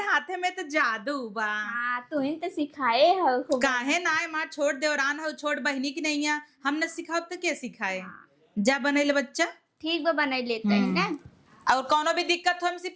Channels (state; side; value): identical; both; correlation 1.00